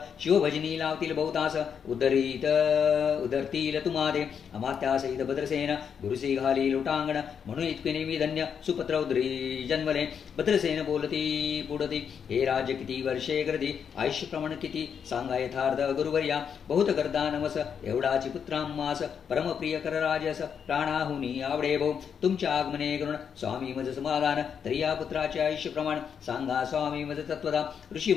शिवभजनी लावतील बहुतास उदरतील तुम्हादे अमात्यासहित भद्रसेन गुरुसी घाली लोटांगण म्हणून इतके नेहमी धन्य सुपत्र उदरी जन्मले. भद्रसेन बोलती पुढती हे राज्य किती वर्षे गर्दी आयुष्य प्रमाण किती सांगा यथार्थ गुरुवर्या बहुत गर्दा नमस एवढाची पुत्रांमास परमप्रिय कर राजस प्राणाहुनी आवडे भाऊ तुमच्या आगमने करून स्वामी मज समाधान तरी या पुत्राचे आयुष्य प्रमाण सांगा स्वामी मज तत्वदा. ऋषी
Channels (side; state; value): right; quieter; 7.3 dB